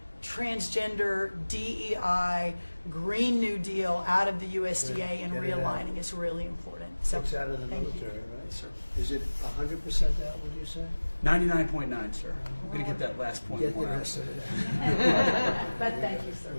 transgender, DEI, Green New Deal out of the USDA and realigning is really important. So it's out of the military, right? Yes, sir. Is it 100% out, would you say? 99.9, sir. We're going to get that last point. Get the rest of it. But thank you, sir.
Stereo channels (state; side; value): inverted; both; correlation -1.00